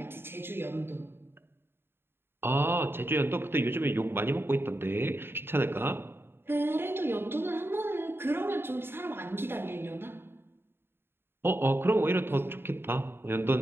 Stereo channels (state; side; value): late; left; 0.11 ms